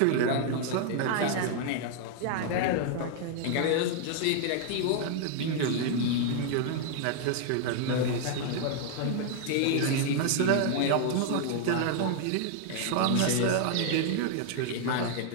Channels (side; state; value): both; different; correlation 0.00